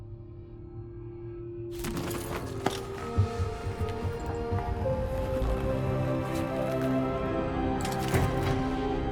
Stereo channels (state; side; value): identical; both; correlation 1.00